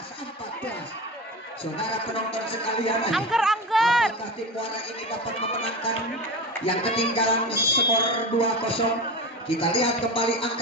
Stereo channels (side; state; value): both; normal; correlation 0.26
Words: saudara penonton sekalian, apakah tim Muara ini dapat memenangkan yang ketinggalan skor 2-0? Kita lihat kembali